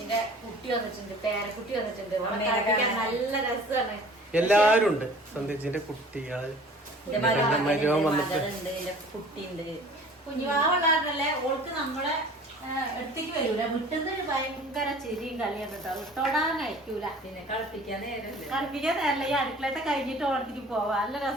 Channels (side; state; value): both; normal; correlation 0.47